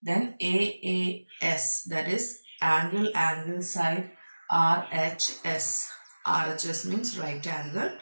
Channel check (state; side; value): inverted; both; correlation -1.00